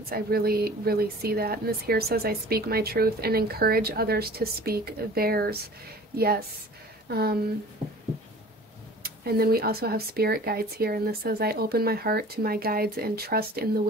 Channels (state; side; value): normal; both; correlation 0.44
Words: I really, really see that. And this here says, I speak my truth and encourage others to speak theirs. Yes. And then we also have spirit guides here. And this says, I open my heart to my guides and trust in the